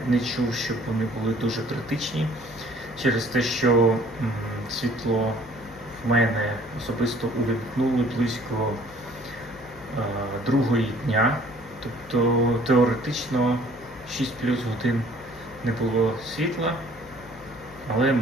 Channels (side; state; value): left; noise; hum, 22 dB below the sound